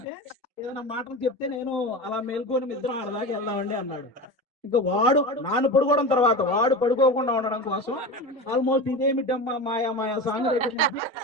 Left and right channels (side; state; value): both; normal; correlation 0.26